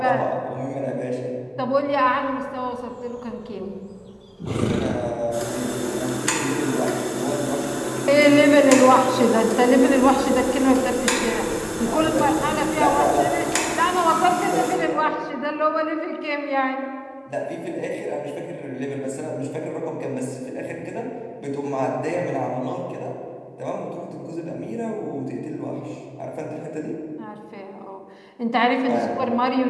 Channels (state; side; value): identical; both; correlation 1.00